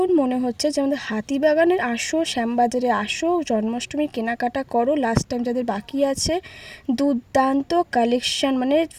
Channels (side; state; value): both; identical; correlation 1.00